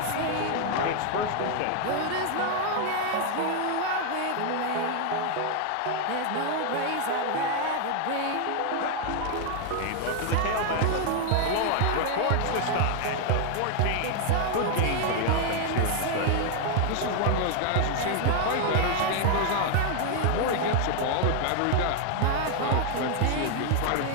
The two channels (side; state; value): both; different; correlation 0.00